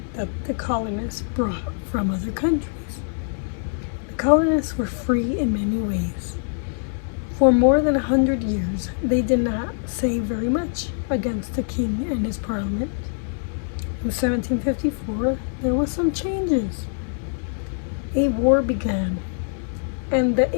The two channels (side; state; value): right; silent; digital silence